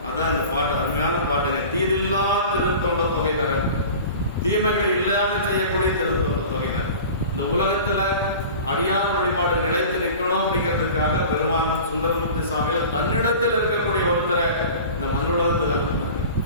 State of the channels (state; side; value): inverted; both; correlation -0.38